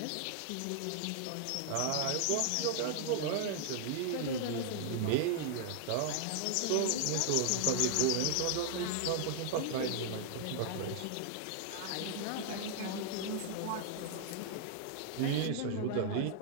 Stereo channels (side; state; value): both; different; correlation 0.00